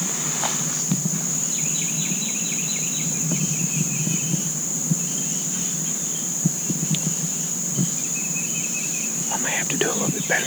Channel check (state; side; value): noise; right; hiss, 9 dB below the sound